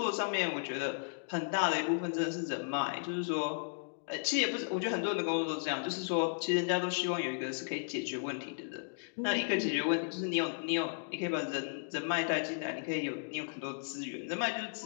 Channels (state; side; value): silent; right; digital silence